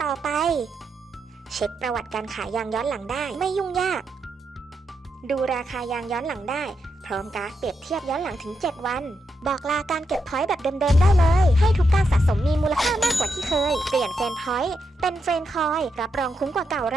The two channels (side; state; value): both; normal; correlation 0.83